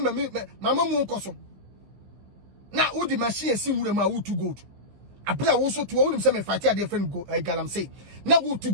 mu nkoso. Na udi machine si wure ma wo to gold. Abra wo so to wo nim se me fight a different galam say. Na wo to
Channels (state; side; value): late; left; 15 ms